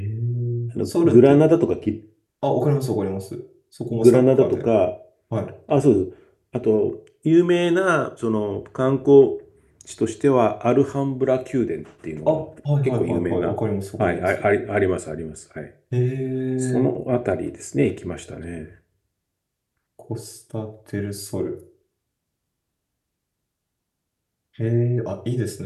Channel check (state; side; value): identical; both; correlation 1.00